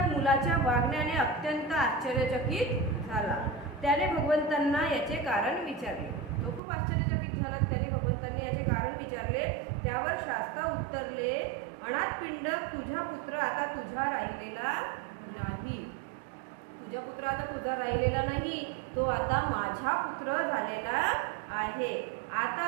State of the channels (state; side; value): drops out; left; at 6.6 s